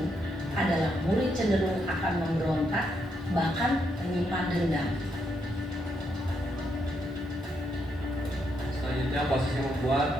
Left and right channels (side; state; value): both; normal; correlation 0.78